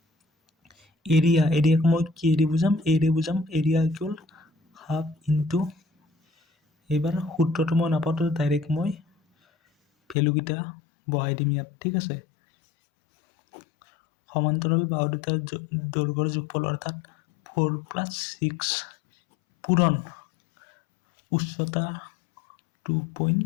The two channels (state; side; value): drops out; right; at 10.2 s